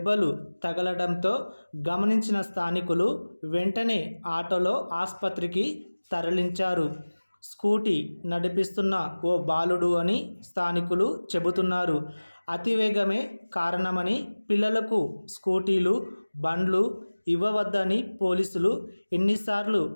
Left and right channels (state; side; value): inverted; both; correlation -1.00